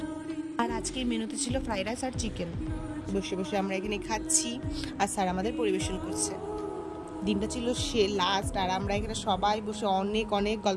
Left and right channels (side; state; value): both; identical; correlation 1.00